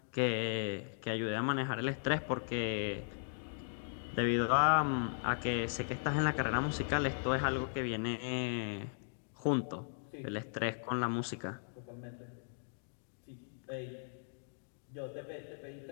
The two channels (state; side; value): silent; right; digital silence